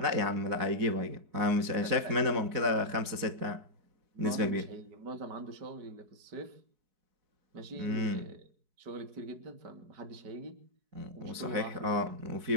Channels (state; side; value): late; left; 4.6 ms